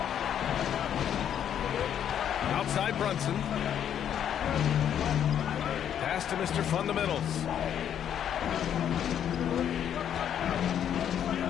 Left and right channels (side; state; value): right; quieter; 9.5 dB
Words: Outside Brunson. Pass to Mr. Fundamentals.